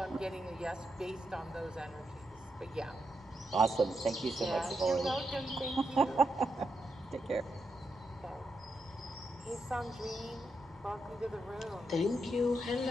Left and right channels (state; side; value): normal; both; correlation 0.84